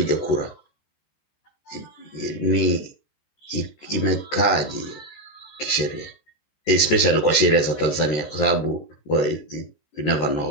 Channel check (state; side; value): late; right; 13 ms